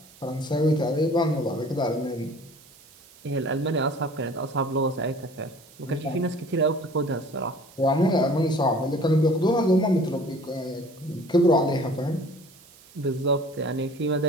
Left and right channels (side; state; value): right; noise; hiss, 25 dB below the sound